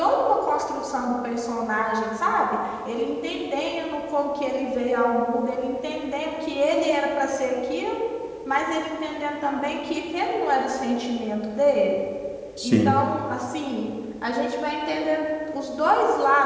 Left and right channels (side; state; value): both; identical; correlation 1.00